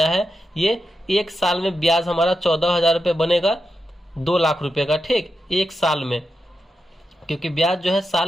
है, ये एक साल में ब्याज हमारा 14,000 रुपये बनेगा 2 लाख रुपये का, ठीक, एक साल में। क्योंकि ब्याज जो है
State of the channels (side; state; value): both; normal; correlation 0.88